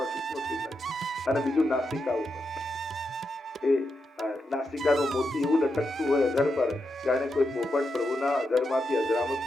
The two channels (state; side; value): normal; both; correlation 0.85